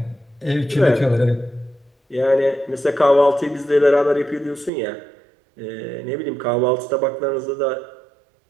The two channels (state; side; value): drops out; left; at 4.7 s